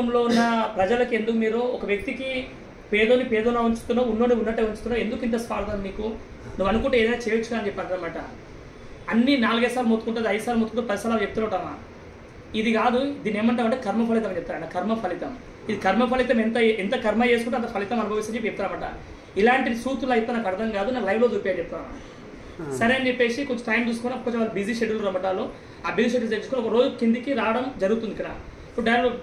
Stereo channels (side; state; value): both; identical; correlation 1.00